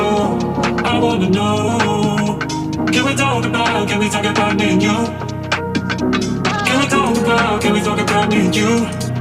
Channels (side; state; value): both; identical; correlation 1.00